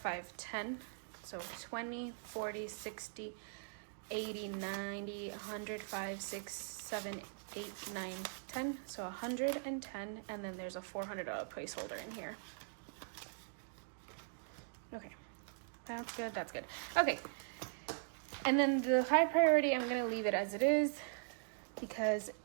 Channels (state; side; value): silent; left; digital silence